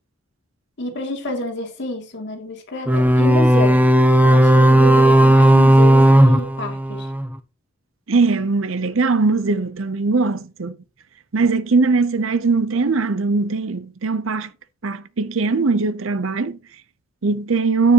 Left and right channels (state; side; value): normal; both; correlation 0.77